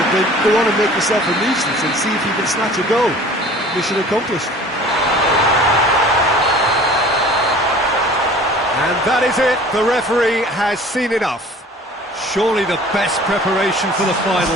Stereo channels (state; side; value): normal; both; correlation 0.46